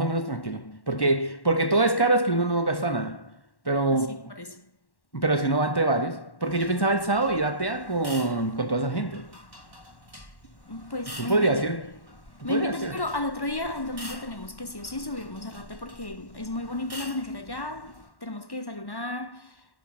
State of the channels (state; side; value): late; right; 1.1 ms